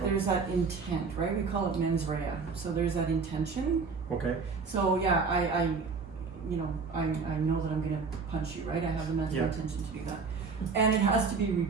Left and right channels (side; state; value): left; quieter; 4.8 dB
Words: intent, right? We call it mens rea. So there's that intention. Okay. So yeah, I know that I'm gonna punch you, right? I have the mental intention to do that. And it has to be